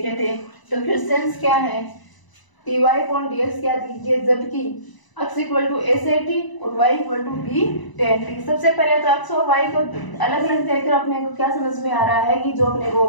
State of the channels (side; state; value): right; late; 1.0 ms